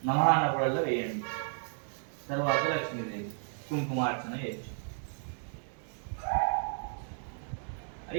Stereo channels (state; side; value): silent; left; 56 dB below the other